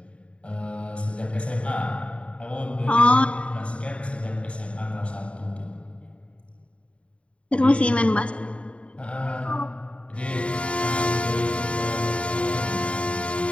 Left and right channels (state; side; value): late; right; 0.061 ms